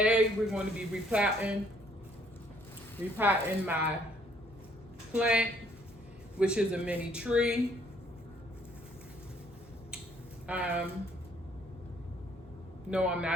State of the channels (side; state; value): both; normal; correlation 0.64